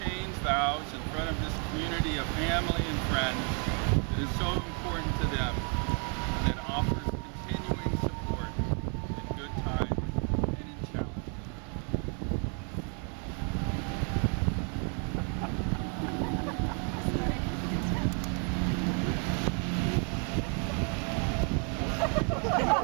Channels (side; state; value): left; quieter; 39.6 dB